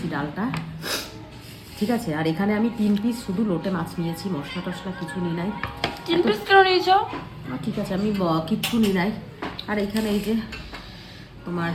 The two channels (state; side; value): identical; both; correlation 1.00